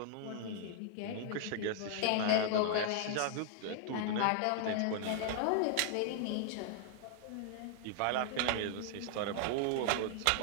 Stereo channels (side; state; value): both; different; correlation 0.00